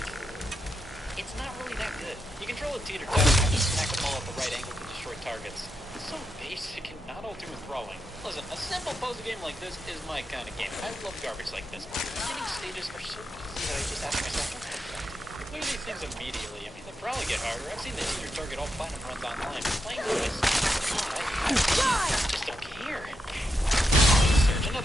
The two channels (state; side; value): normal; both; correlation 0.84